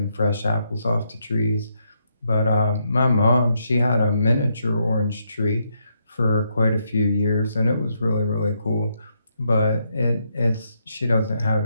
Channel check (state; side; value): inverted; both; correlation -0.78